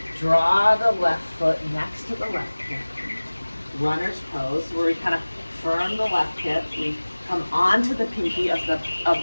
Draw the left foot next to the left hip. Runner's pose, where we kind of firm the left hip. We come onto the pinky of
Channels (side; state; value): both; inverted; correlation -1.00